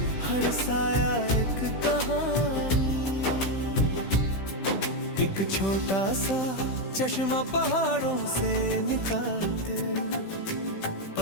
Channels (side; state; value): right; late; 15 ms